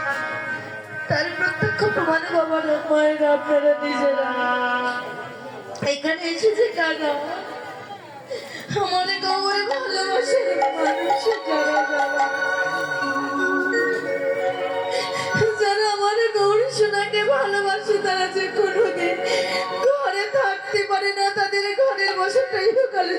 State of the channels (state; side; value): identical; both; correlation 1.00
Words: তার প্রত্যক্ষ প্রমাণ বাবার মায়ের আপনারা নিজেরা এখানে এসেছে কাকা আমাদের গৌরে ভালোবাসে মানুষের যারা আমাদের গৌরী সোনাকে ভালোবাসে তারা যে কোনোদিন ঘরে থাকতে পারে না, তাদের ঘরের বসতটা ইহকালে